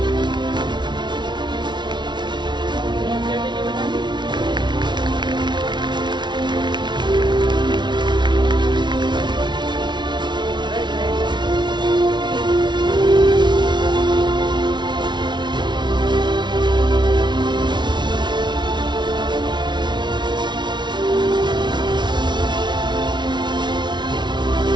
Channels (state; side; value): late; left; 0.22 ms